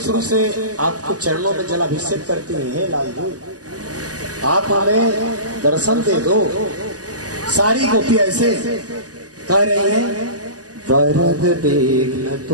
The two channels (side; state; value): left; late; 0.67 ms